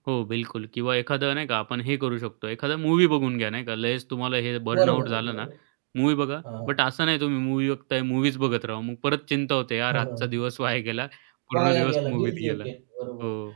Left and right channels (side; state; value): left; silent; 61 dB below the other